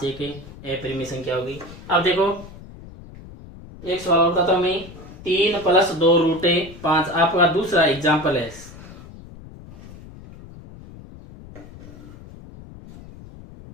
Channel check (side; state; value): left; noise; rumble, 17 dB below the sound